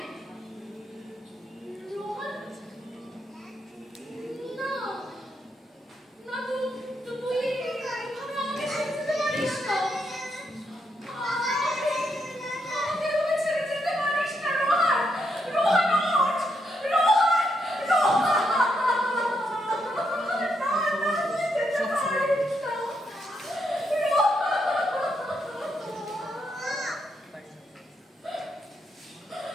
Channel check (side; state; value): both; normal; correlation 0.79